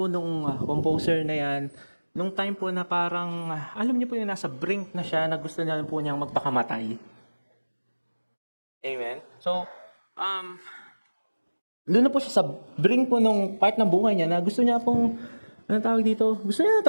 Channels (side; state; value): both; inverted; correlation -1.00